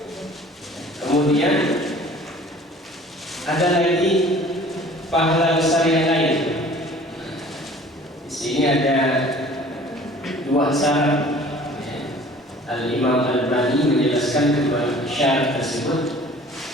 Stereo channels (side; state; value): both; normal; correlation 0.49